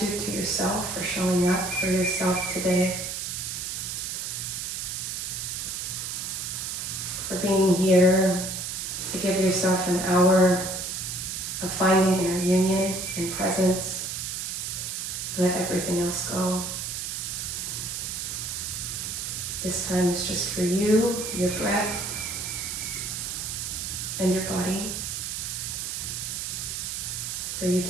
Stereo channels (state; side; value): noise; right; hiss, 4 dB below the sound